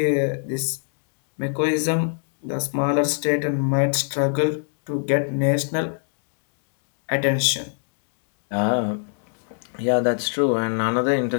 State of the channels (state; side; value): silent; right; digital silence